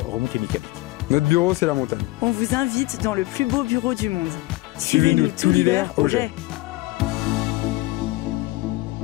remontée mécanique. Notre bureau, c'est la montagne. On vous invite dans le plus beau bureau du monde. Suivez-nous tout l'hiver au Jet.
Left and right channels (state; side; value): quieter; right; 19.8 dB